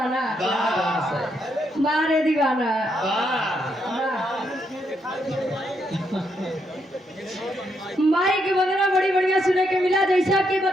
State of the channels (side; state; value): both; normal; correlation 0.78